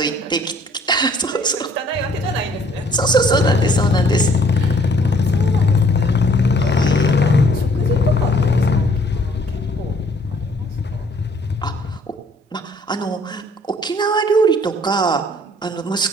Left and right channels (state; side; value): normal; both; correlation 0.60